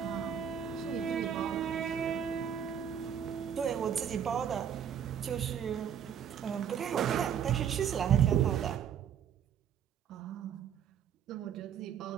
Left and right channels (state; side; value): quieter; left; 8.6 dB